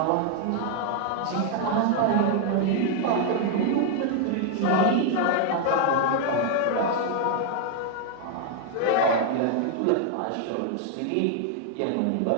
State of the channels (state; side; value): different; both; correlation 0.00